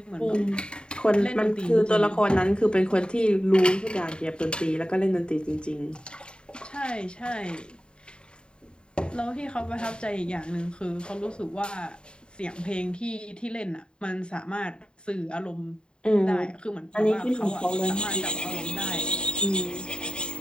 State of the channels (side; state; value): right; late; 0.051 ms